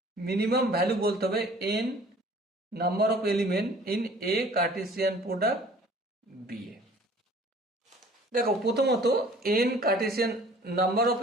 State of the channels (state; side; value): normal; both; correlation 0.51